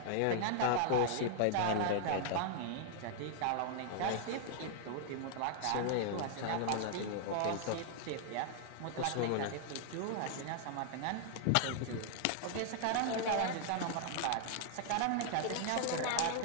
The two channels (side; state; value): both; different; correlation -0.01